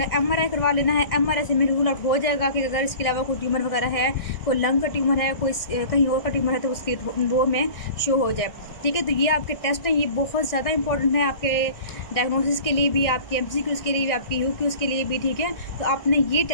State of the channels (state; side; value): late; right; 1.6 ms